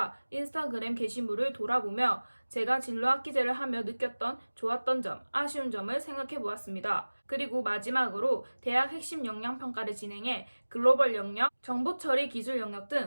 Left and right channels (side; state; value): both; inverted; correlation -1.00